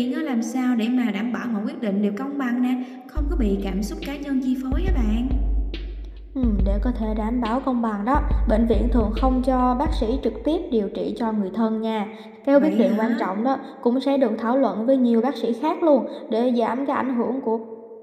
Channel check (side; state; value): both; identical; correlation 1.00